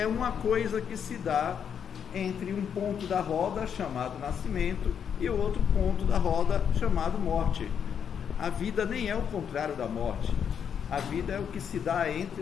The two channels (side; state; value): right; quieter; 7.8 dB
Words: uma coisa que se dá entre um ponto da roda chamado nascimento e o outro ponto da roda chamado morte. A vida nem é o contrário da morte. A vida é o que se dá entre